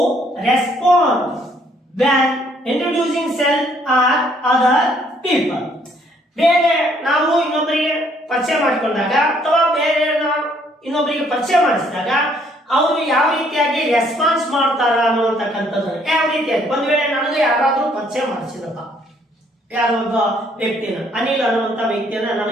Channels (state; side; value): normal; both; correlation 0.65